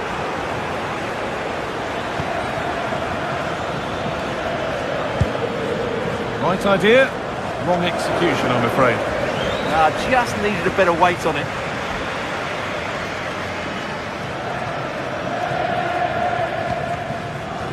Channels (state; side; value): identical; both; correlation 1.00